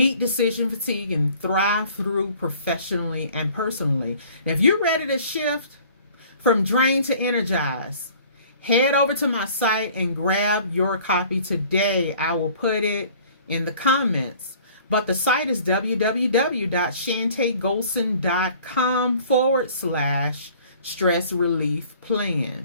decision fatigue, and thrive through professionally and personally. Now, if you're ready to shift from drain to energize, head over to my site and grab your copy today. I will put it in the comments. But the site is www.shantaygolson.com/stress relief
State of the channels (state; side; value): inverted; both; correlation -0.52